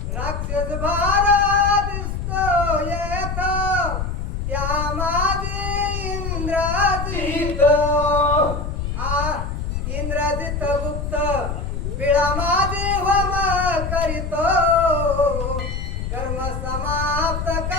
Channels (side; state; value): left; noise; rumble, 3 dB below the sound